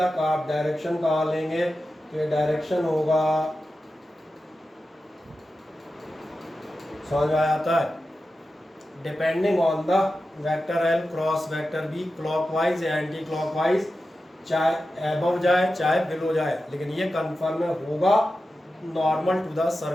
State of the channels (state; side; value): normal; both; correlation 0.92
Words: का आप डायरेक्शन कहाँ लेंगे, तो ये डायरेक्शन होगा, समझ में आ जाता है, depending on the vector L cross vector B, clockwise या एंटी क्लॉकवाइज, चाहे अबव जाए चाहे बिलो जाए, लेकिन ये कन्फर्म होगा नॉर्मल टू द